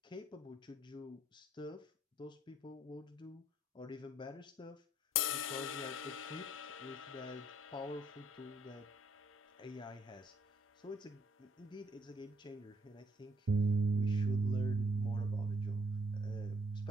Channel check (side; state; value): both; normal; correlation 0.67